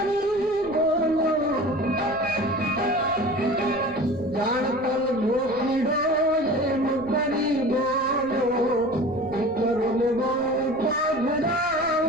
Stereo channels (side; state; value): left; noise; rumble, 21 dB below the sound